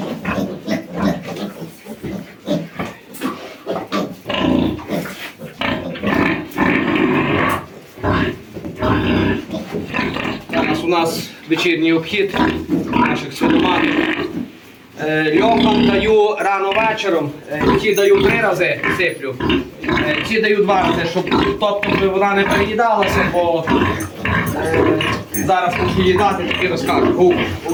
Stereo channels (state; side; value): identical; both; correlation 1.00